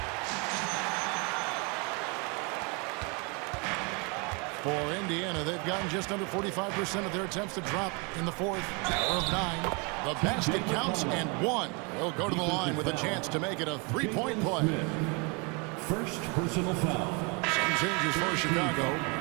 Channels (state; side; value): quieter; left; 31.7 dB